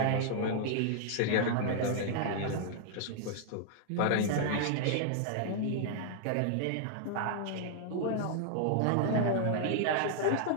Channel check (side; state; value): both; different; correlation -0.01